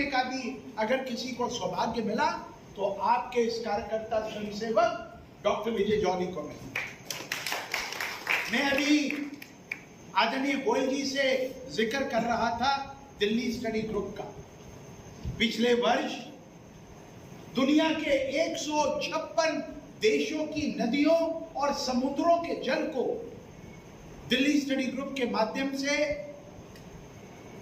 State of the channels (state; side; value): identical; both; correlation 1.00